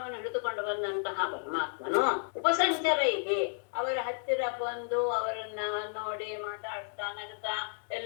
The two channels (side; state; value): right; silent; 56 dB below the other